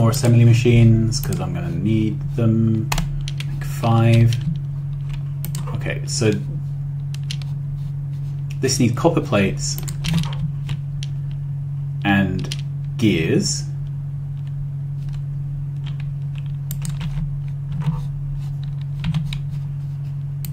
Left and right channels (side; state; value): both; identical; correlation 1.00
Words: assembly machines because I'm going to need them. Make 5. Okay, so this needs copper plates and gears.